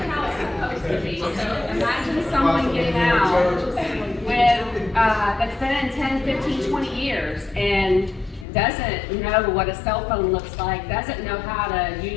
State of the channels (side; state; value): right; drops out; at 8.5 s